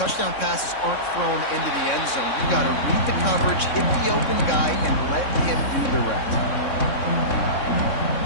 passes aren't thrown into the end zone. You've got to read the coverage, hit the open guy, and let him do the rest.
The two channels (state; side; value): late; right; 3.6 ms